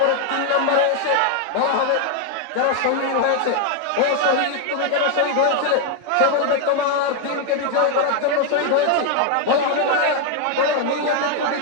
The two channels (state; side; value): different; both; correlation 0.01